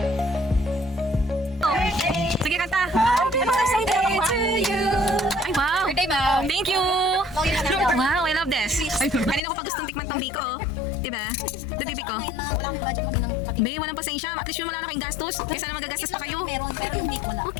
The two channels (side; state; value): right; drops out; at 9.4 s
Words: Sige, kanta. Happy birthday to you. Ay, wow. Birthday, ma'am. Thank you. Wow, I love this. Kanina ko pa gustong tikman tong biko. Diba? The bibi ko. Wala akong budget mo din ng pati. Be, walang pasensya. At least yung wala na kayong gastos. Kaysa na magagastos pa kayo. Pero yung week wala.